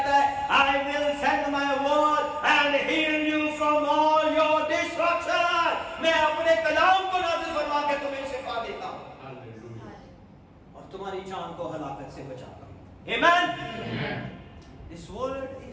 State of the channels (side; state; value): both; identical; correlation 1.00